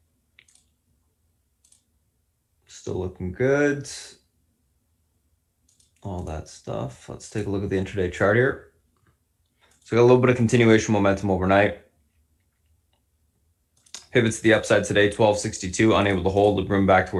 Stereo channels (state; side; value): identical; both; correlation 1.00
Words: Still looking good. All that stuff. Let's take a look at the intraday chart here. So we got a little bit of continuation momentum overnight. Pivots to the upside today, 1262, unable to hold, the room back